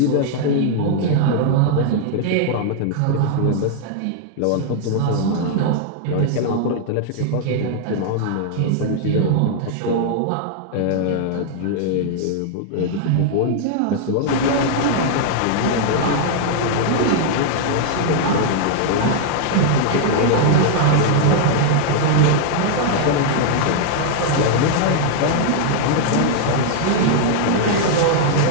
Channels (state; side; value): different; both; correlation -0.01